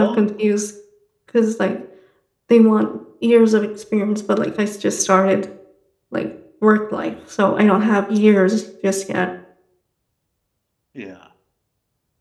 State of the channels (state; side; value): identical; both; correlation 1.00